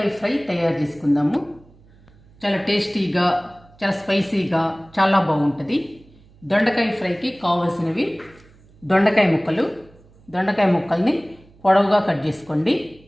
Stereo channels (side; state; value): right; noise; hum, 28 dB below the sound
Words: ఫ్రై తయారు చేసుకుందాము. చాలా టేస్టీగా, చాలా స్పైసీగా, చాలా బాగుంటుంది. దొండకాయ ఫ్రైకి కావాల్సినవి దొండకాయ ముక్కలు. దొండకాయ ముక్కల్ని పొడవుగా కట్ చేసుకోండి,